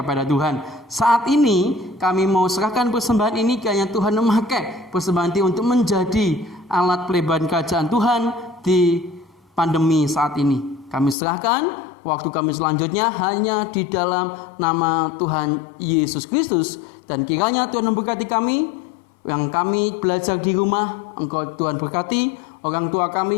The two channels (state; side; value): drops out; right; at 11.2 s